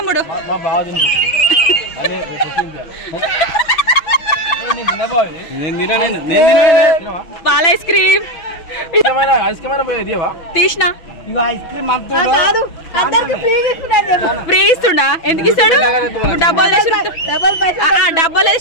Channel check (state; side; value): late; right; 6.1 ms